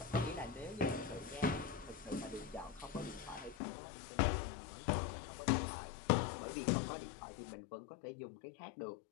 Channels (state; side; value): drops out; right; at 3.6 s